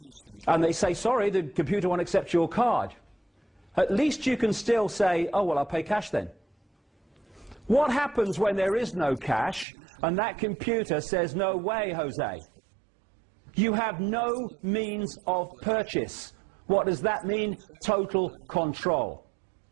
and they say, sorry, the computer won't accept your card, at least you can still say, oh, well, I'll pay cash then. What happens when there is no cash and that computer says, no way, Jose? You have no means of purchase. What does that mean? Total control.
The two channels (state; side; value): drops out; left; at 9.7 s